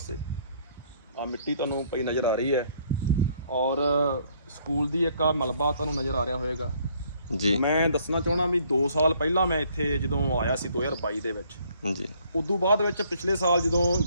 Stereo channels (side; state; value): both; inverted; correlation -0.64